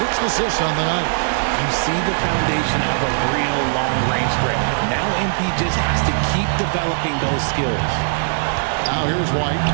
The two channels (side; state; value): left; silent; digital silence